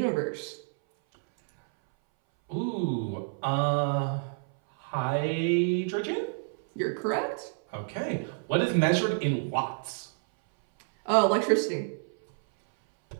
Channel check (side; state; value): left; silent; 59 dB below the other